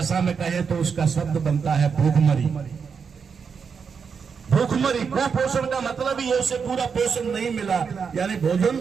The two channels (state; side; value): quieter; left; 6.1 dB